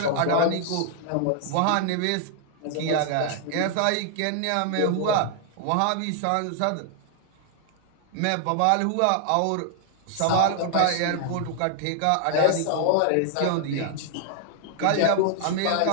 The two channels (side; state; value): both; different; correlation 0.00